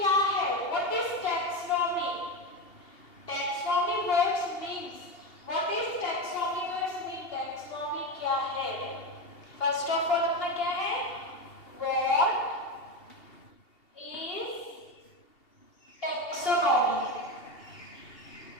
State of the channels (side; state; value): right; late; 2.7 ms